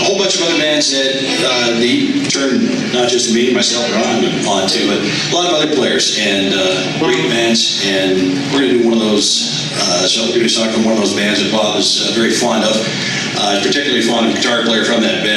whole bunch of other bands that he turned not just me, myself, and Ron on to, but a lot of other players and great bands. And we're going to do one of those. So we're going to do a song from one of those bands that Bob is very fond of. Particularly fond of a guitar player from that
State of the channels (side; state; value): both; identical; correlation 1.00